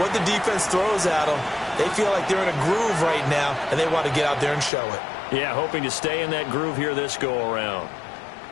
what the defense throws at them. They feel like they're in a groove right now, and they want to get out there and show it. Yeah, hoping to stay in that groove here this go-around.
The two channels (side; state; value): right; drops out; at 4.7 s